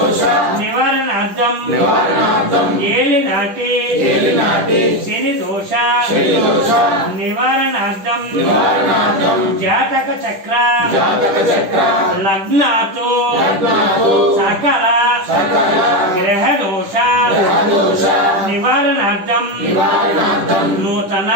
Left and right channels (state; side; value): late; left; 10 ms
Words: నివారణార్థం ఏలినాటి శని దోష నివారణార్థం జాతక చక్ర లగ్నాతో సకల గ్రహ దోష నివారణార్థం నూతన